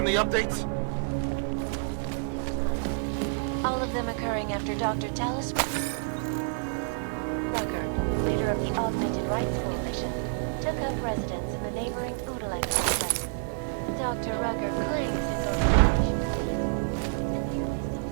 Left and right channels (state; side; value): silent; left; digital silence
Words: updates? all of them occurring after Dr. Talis Rucker, leader of the Augmented Rights Coalition, took up residence in the neighboring Udalek complex. Dr. Rucker claims his organization.